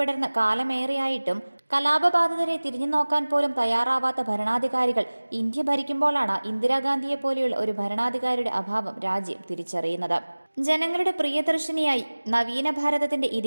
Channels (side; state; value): both; inverted; correlation -1.00